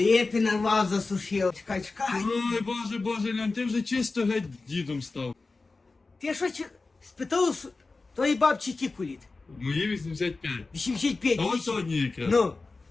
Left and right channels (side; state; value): right; quieter; 3.7 dB